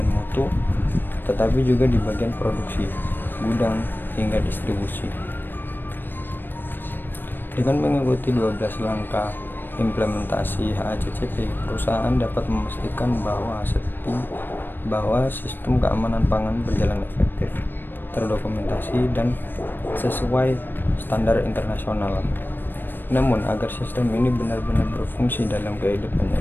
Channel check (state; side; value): late; right; 0.095 ms